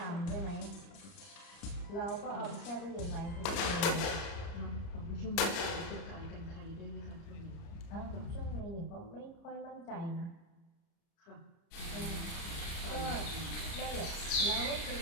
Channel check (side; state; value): right; late; 30 ms